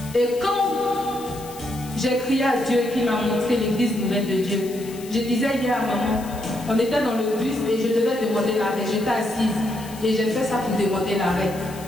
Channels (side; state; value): left; noise; hiss, 17 dB below the sound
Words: Et quand j'ai crié à Dieu qui m'a montré l'église nouvelle de Dieu, je disais hier à maman, on était dans le bus et je devais demander l'arrêt. J'étais assise et j'ai fait ça pour demander l'arrêt.